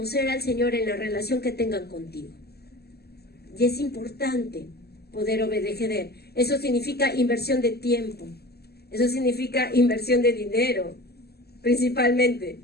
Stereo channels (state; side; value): late; right; 0.47 ms